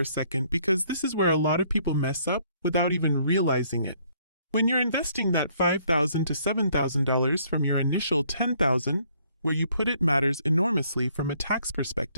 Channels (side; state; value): both; inverted; correlation -0.65